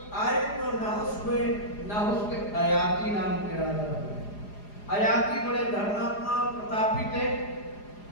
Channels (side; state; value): right; late; 4.9 ms